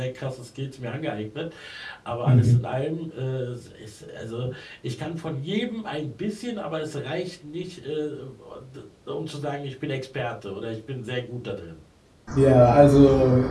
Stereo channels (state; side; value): identical; both; correlation 1.00